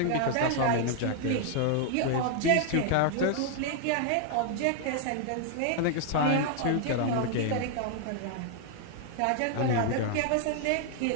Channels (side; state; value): both; different; correlation 0.00